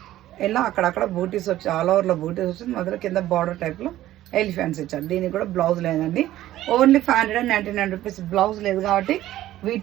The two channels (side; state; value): left; quieter; 14.2 dB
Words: ఇలా అక్కడక్కడ బూటీస్ వచ్చి, ఆల్ ఓవర్లో బూటీస్ వచ్చింది. మొదలు కింద బార్డర్ టైప్లో ఎలిఫెంట్స్ ఇచ్చారు. దీనికి కూడా బ్లౌజ్ లేదండి. Only 599 rupees. బ్లౌజ్ లేదు కాబట్టి వీటి